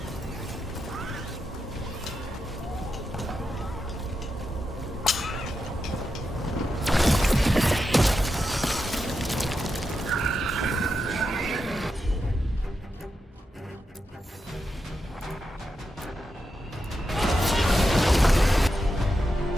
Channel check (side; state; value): both; normal; correlation 0.87